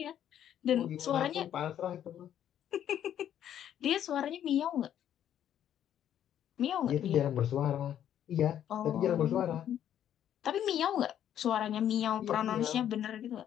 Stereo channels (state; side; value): quieter; right; 10.4 dB